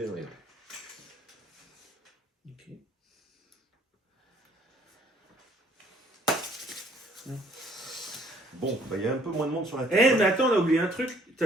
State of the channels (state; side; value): normal; both; correlation 0.61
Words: dans les mains. Ok. Bon, bah, il y a un peu moins de monde sur la Eh, table. mais attends, on a oublié un truc.